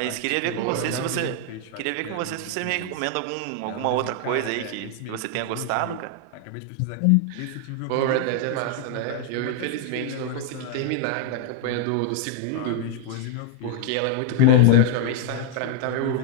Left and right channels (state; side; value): different; both; correlation 0.00